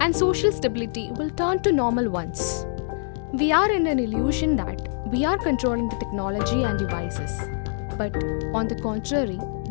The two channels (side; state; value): right; silent; digital silence